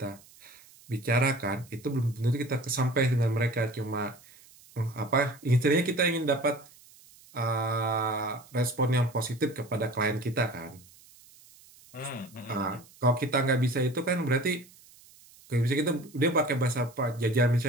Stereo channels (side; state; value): right; noise; hiss, 25 dB below the sound